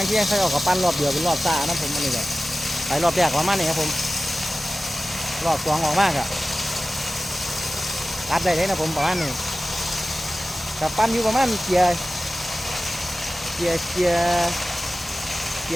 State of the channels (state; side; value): normal; both; correlation 0.96